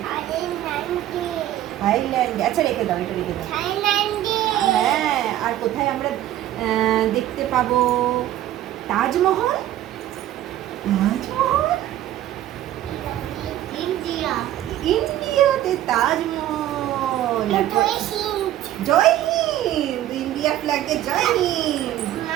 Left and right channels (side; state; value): left; quieter; 13.2 dB